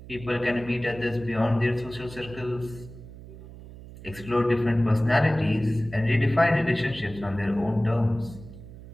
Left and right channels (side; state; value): right; noise; hum, 16 dB below the sound